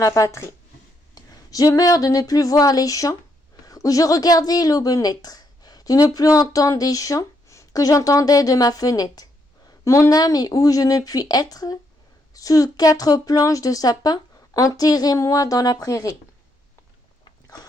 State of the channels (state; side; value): normal; both; correlation 0.76